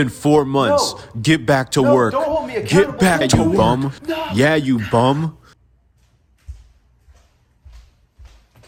4 months. No. Get back to No, work. don't hold me accountable. Get back, Don't you do it. bum. No. Yeah, you bum.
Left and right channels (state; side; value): identical; both; correlation 1.00